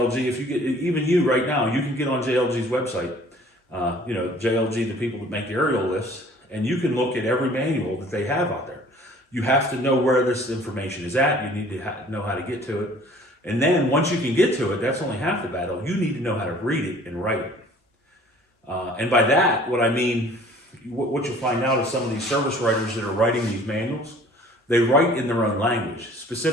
If you get, even you right now, you can get on JLG's website, JLG, the people that make aerial lifts, and you can look at every manual that they have out there. You have to know where this information is at. You need to know how to get to it. And then once you can get to it, that's only half the battle. You need to know how to read it and write it. And by that, what I mean, what you'll find out is some of these service writers that are writing these manuals, they write in their own language.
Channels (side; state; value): both; normal; correlation 0.52